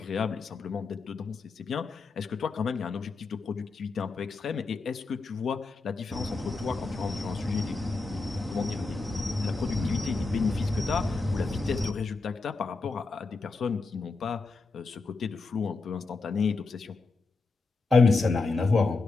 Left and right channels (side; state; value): right; quieter; 3.9 dB